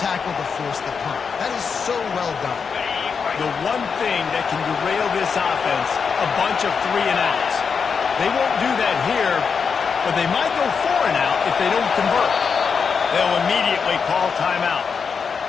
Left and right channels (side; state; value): right; quieter; 5.9 dB